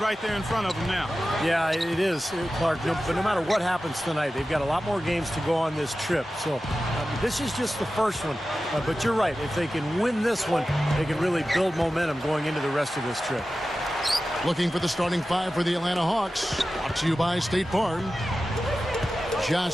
there in front of them now. Yeah, it is, Clark. But no matter what happens tonight, they've got a lot more games to go on this trip. So this is just the first one. But you're right. If they can win this one, they can really build momentum going into the rest of this trip. Looking for the starting five for the Atlanta Hawks. Brought to you by State Farm.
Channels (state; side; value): normal; both; correlation 0.94